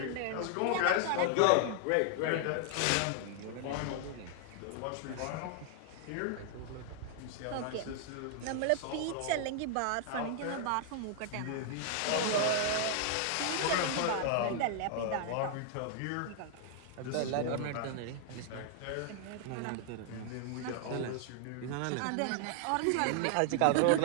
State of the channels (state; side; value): different; both; correlation 0.00